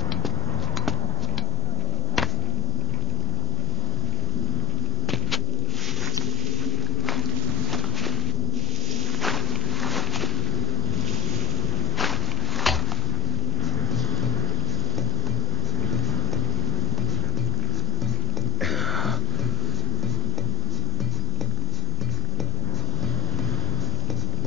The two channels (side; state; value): both; normal; correlation 0.23